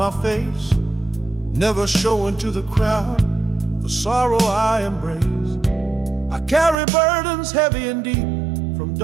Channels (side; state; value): left; drops out; at 6.8 s